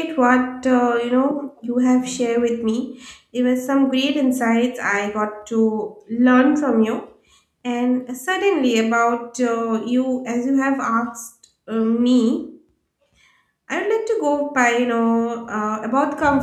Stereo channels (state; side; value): identical; both; correlation 1.00